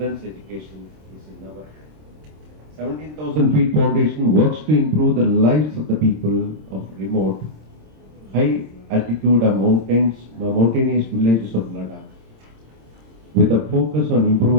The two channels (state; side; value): late; left; 26 ms